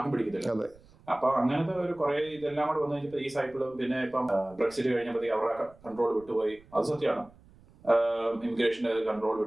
പിടിക്കത്തില്ല. അപ്പൊ അങ്ങനത്തെ ഒരു കുറെ ഇതെല്ലാം കൂടെ വന്നു കഴിഞ്ഞപ്പോ ഈ സൈക്കിളും, പിന്നെ ഇപ്പം ബ്രെക്സിറ്റ് കഴിഞ്ഞപ്പോഴത്തേക്ക് അവരുടെ കൺട്രോൾ വിട്ടുപോയി. അത് സത്യമാണ്, ഇമിഗ്രേഷന്റെ കൺട്രോൾ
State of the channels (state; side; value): noise; right; rumble, 26 dB below the sound